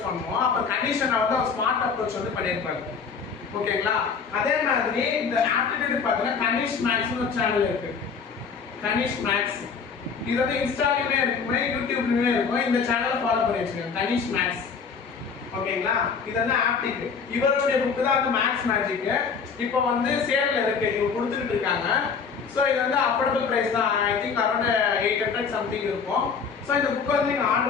பண்ணுவோம், அப்போ கண்டிஷனை வந்து அவர் ஸ்மார்ட் அப்ரோச் வந்து பண்ணியிருப்பாரு. ஓகேங்களா? அதே மாதிரி இந்த ஆப்டிடியூட் பார்த்தீங்கன்னா கனிஷ் மேக்ஸ்னு ஒரு சேனல் இருக்கு. கனிஷ் மேக்ஸ் இது வந்து இன்ஸ்டாலையுமே இருக்குமே, யூடியூப்லையுமே இருக்கும். இந்த சேனலை ஃபாலோ பண்ணி வச்சுக்கோங்க, கனிஷ் மேக்ஸ். ஓகேங்களா? இது வந்து ஆப்டிக். இவருடைய புக்கு தான் வந்து மேக்ஸ் மேஜிக். இப்போ வந்து சேல்ல இருக்கு, இவங்க கொடுத்துட்டு இருக்காங்க. ஸோ இது வந்து அஃபோர்டபுள் ப்ரைஸ் தான். ஐ திங்க் அரௌண்ட் 800 சம்திங் இருக்கும். ஸோ இந்த புக் வந்து நீங்கள்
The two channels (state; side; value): quieter; right; 5.8 dB